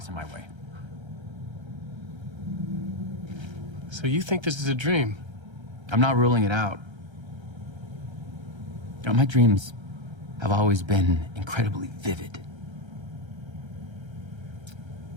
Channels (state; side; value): late; left; 1.3 ms